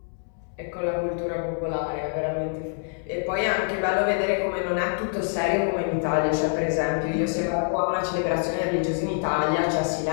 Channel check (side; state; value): right; silent; digital silence